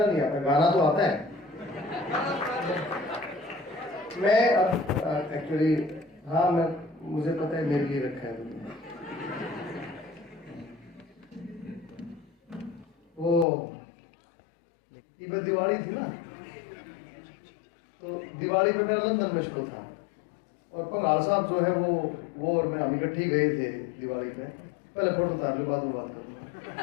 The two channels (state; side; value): drops out; right; at 13.5 s